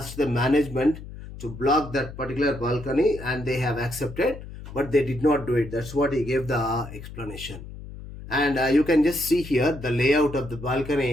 the management to block that particular balcony and they have accepted, but they did not do it. That's what he gave the explanation. And you can just see here the layout of the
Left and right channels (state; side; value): noise; left; hum, 13 dB below the sound